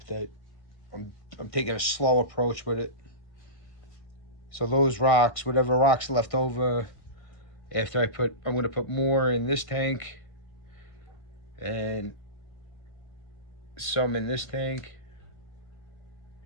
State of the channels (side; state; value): right; late; 1.5 ms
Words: That I'm taking a slow approach with it. So those rocks, whatever rocks left over, after I'm going to put more in this tank and some in this tank.